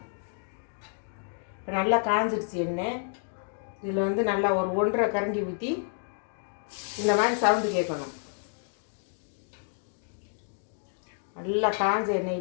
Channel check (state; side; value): silent; right; digital silence